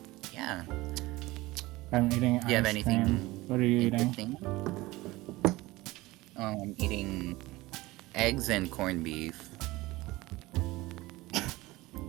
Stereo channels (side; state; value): left; quieter; 19.9 dB